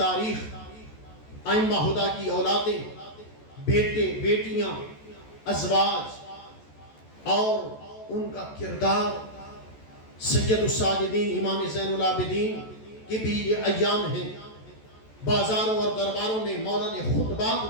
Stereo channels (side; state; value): right; late; 14 ms